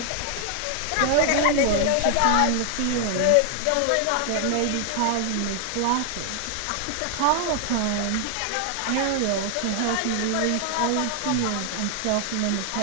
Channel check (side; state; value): both; different; correlation 0.00